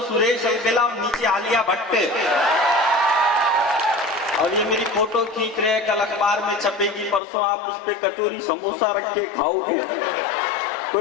सुरेश अलबेला और नीचे आलिया भट्ट। और ये मेरी फोटो खींच रहे हैं, कल अखबार में छपेगी, परसों आप उस पे कचौरी समोसा रख के खाओगे।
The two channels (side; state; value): right; drops out; at 7.2 s